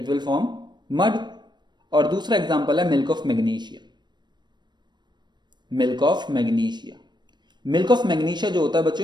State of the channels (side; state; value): left; late; 0.21 ms